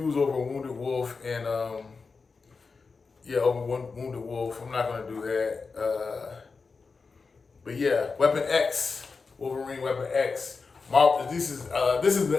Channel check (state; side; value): quieter; right; 4.6 dB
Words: over Wounded Wolf and over Wounded Wolf. I'm not going to do that. But yeah, Weapon X, Wolverine Weapon X. This is